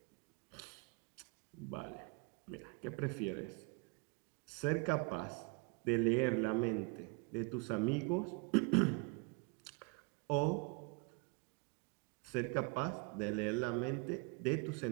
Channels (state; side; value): quieter; left; 29.8 dB